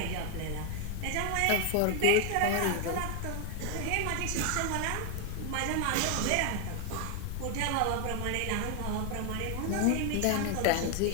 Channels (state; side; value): different; both; correlation 0.01